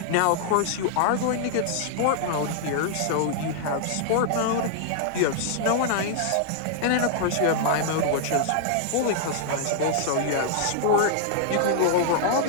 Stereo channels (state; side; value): different; both; correlation -0.01